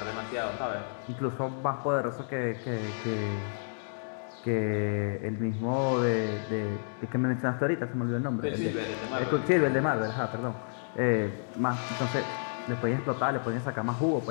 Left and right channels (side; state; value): right; silent; digital silence